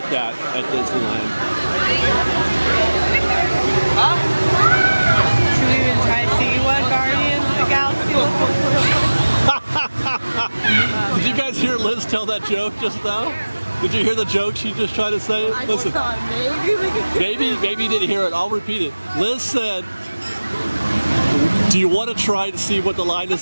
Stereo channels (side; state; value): both; inverted; correlation -1.00